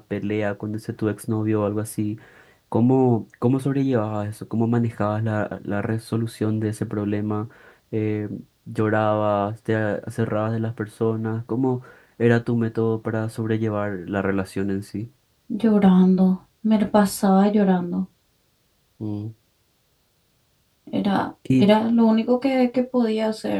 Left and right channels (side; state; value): both; identical; correlation 1.00